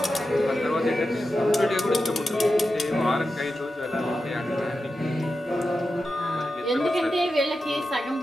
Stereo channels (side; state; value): both; normal; correlation 0.90